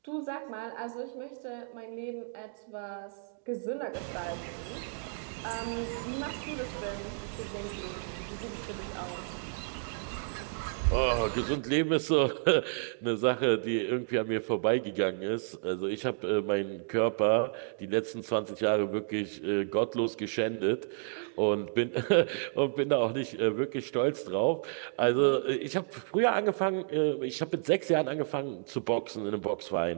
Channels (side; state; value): left; silent; digital silence